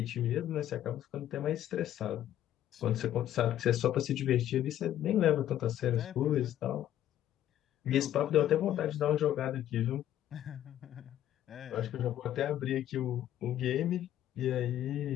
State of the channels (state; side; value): quieter; right; 12.0 dB